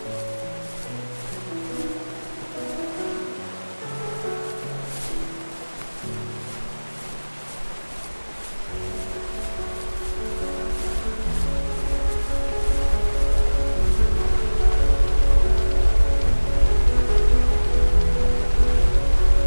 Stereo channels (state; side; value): inverted; both; correlation -1.00